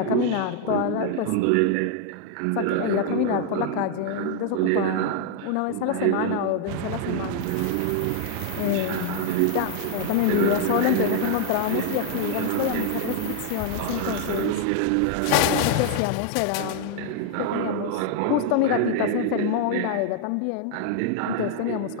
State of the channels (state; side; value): different; both; correlation 0.00